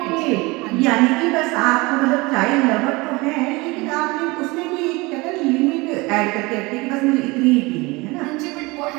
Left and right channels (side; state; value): left; quieter; 24.0 dB